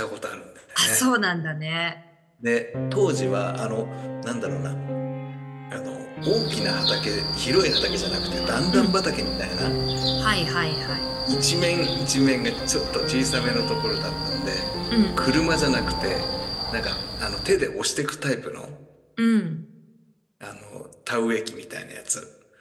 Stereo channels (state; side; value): identical; both; correlation 1.00